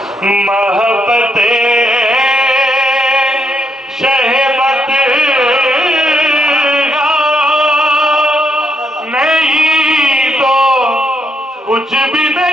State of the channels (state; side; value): normal; both; correlation 0.76